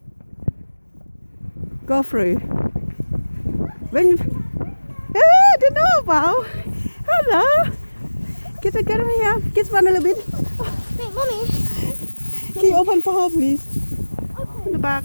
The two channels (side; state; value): both; inverted; correlation -1.00